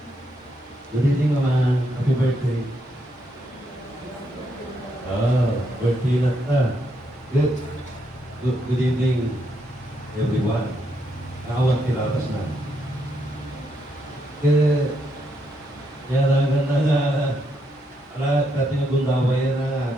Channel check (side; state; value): both; normal; correlation 0.78